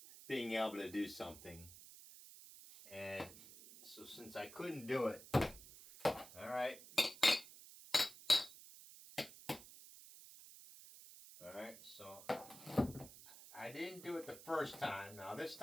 being able to do something. And so since I couldn't do it, alright. Alright, so I didn't do it the first time. Now this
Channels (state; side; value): noise; right; hiss, 16 dB below the sound